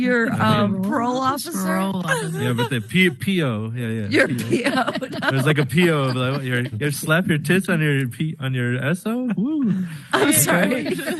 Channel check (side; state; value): both; identical; correlation 1.00